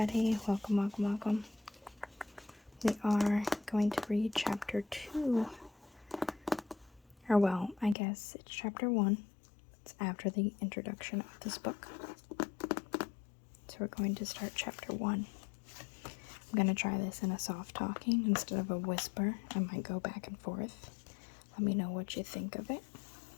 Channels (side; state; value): right; drops out; at 8.0 s